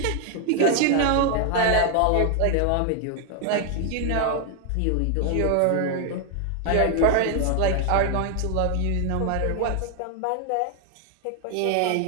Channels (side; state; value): both; different; correlation 0.00